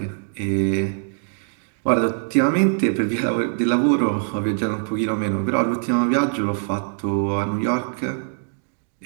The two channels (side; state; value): left; silent; digital silence